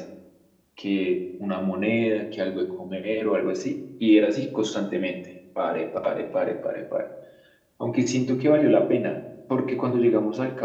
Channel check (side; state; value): both; identical; correlation 1.00